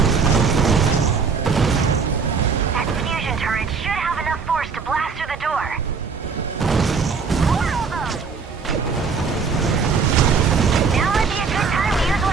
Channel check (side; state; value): left; quieter; 5.3 dB